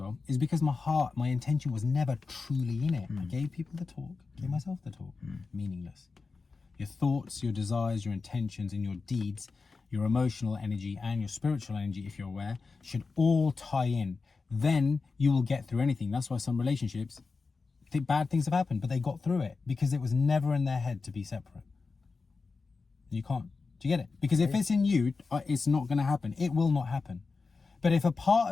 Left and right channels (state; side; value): quieter; right; 4.3 dB